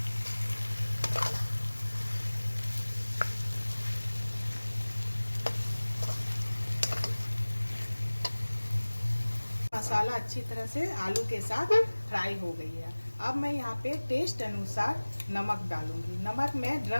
मसाला अच्छी तरह से आलू के साथ फ्राई हो गई है। अब मैं यहाँ पे टेस्ट अनुसार नमक डालूंगी। नमक मैं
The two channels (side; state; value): both; inverted; correlation -1.00